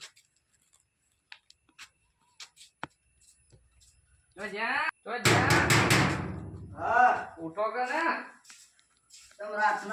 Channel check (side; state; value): both; identical; correlation 1.00